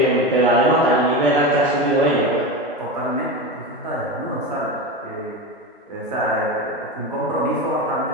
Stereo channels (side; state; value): both; normal; correlation 0.22